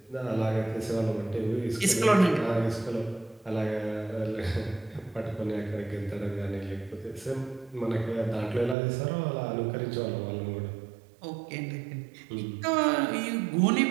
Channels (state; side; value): drops out; left; at 8.8 s